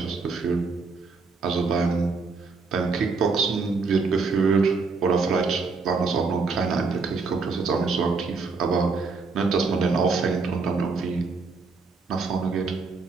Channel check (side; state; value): left; quieter; 4.4 dB